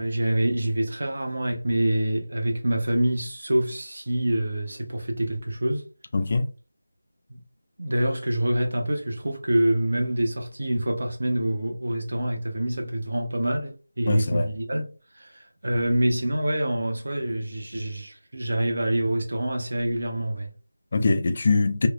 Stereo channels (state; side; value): inverted; both; correlation -0.95